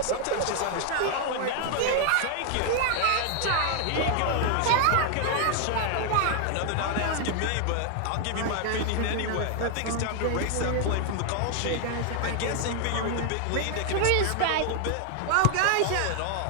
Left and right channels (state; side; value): different; both; correlation 0.00